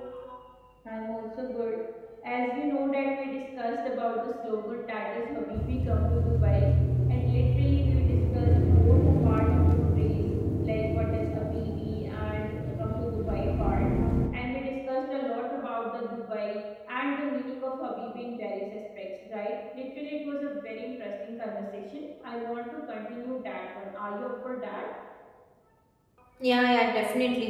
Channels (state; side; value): identical; both; correlation 1.00